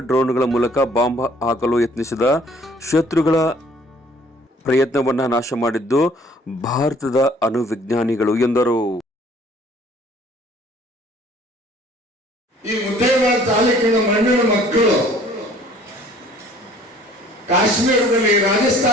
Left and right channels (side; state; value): both; normal; correlation 0.56